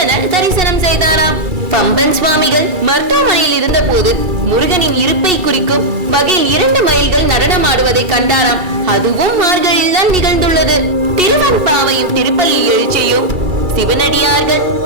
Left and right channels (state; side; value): late; left; 2.3 ms